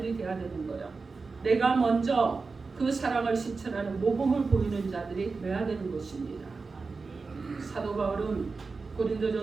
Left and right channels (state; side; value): quieter; left; 4.3 dB